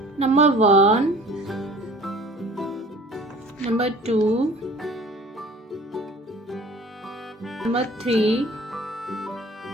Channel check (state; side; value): normal; both; correlation 0.47